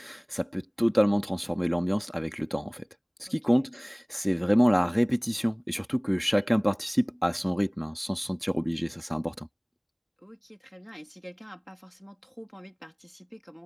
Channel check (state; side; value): identical; both; correlation 1.00